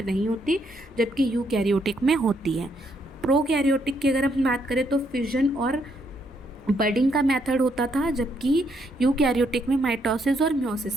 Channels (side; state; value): both; normal; correlation 0.74